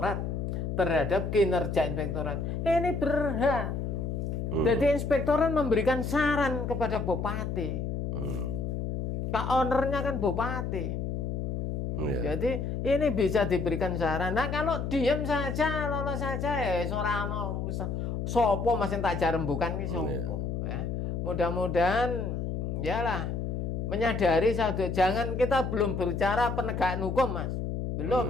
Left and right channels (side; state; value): left; noise; hum, 2 dB below the sound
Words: terhadap kinerja inspektorat, ini berhak. Jadi inspektorat memberikan saran kepada bupati. Pak ownernya kan bupati. Jadi ini bisa diberikan saran. Nah kalau diam saja, lolos saja ya sorano. Sopo masih tak jarembukan ki sopo ya. Mudah-mudahan yalah menyadari satu, jangan kita belum berbicara penegakan hukum Mas.